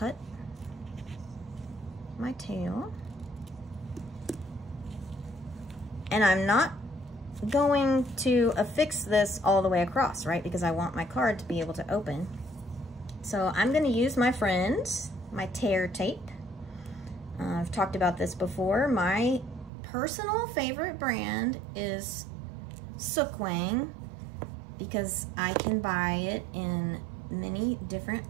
my tail. And I'm not going to affix this all the way across, right? Because I want my card to be able to open. So I'm gonna use my friend, my tear tape. I've talked about this before. My personal favorite brand is Sookwang because I can buy it in many different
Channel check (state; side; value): drops out; left; at 19.7 s